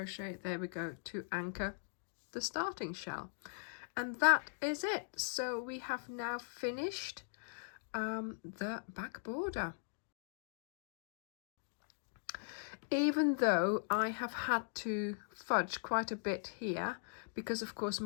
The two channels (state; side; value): silent; right; digital silence